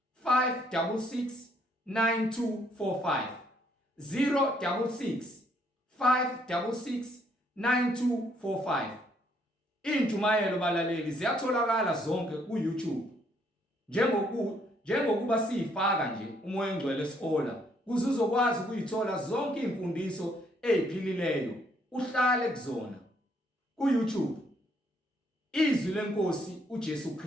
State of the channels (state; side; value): normal; both; correlation 0.69